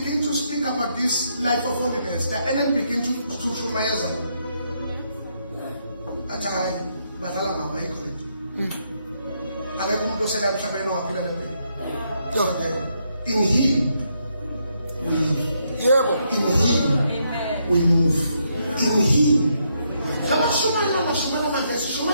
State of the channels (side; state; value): both; inverted; correlation -0.77